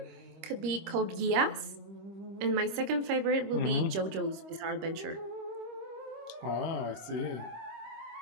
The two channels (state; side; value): late; left; 26 ms